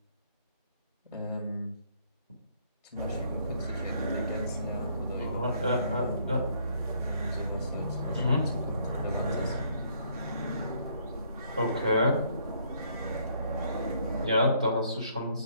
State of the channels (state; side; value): inverted; both; correlation -0.66